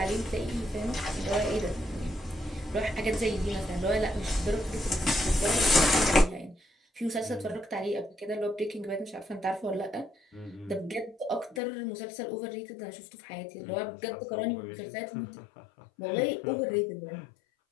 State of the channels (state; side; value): drops out; right; at 11.6 s